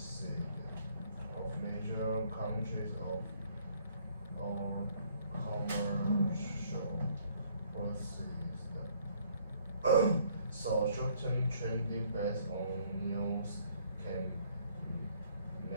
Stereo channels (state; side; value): inverted; both; correlation -0.63